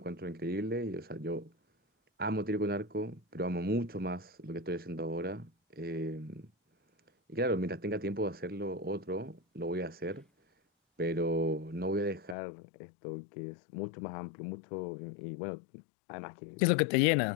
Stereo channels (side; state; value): right; drops out; at 12.4 s